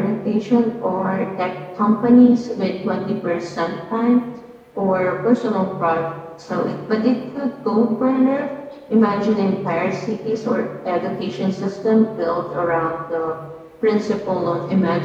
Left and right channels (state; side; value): identical; both; correlation 1.00